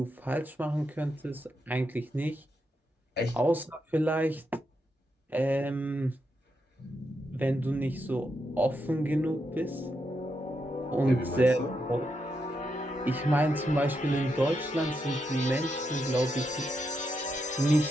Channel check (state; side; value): normal; both; correlation 0.83